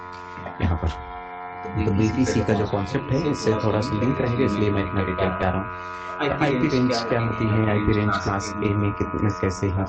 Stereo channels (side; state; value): both; identical; correlation 1.00